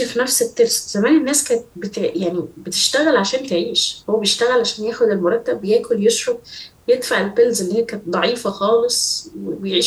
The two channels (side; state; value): both; identical; correlation 1.00